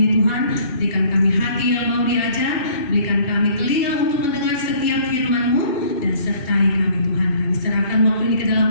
Tuhan, berikan kami hati yang mau diajar, berikan kami telinga untuk mendengar setiap firman-Mu, dan sertai kami Tuhan. Kami serahkan waktu ini ke dalam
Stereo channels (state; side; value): late; right; 2.7 ms